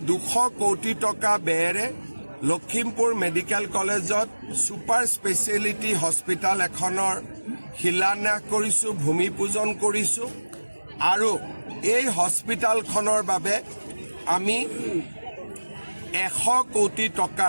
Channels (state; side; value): inverted; both; correlation -1.00